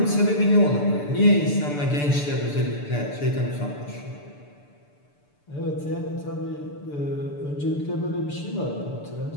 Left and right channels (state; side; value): late; right; 6.8 ms